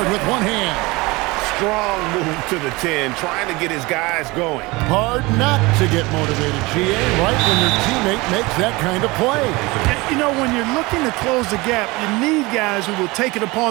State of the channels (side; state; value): left; quieter; 23.1 dB